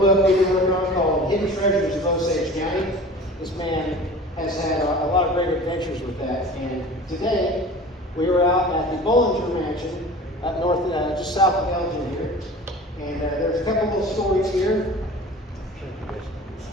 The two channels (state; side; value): normal; both; correlation 0.40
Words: we've been working on called Hidden Treasures of Osage County. This man has had a lot of great adventures with that. And today, we were out at the Bollinger Mansion up north, just south of Elgin here. And there's a couple little stories here.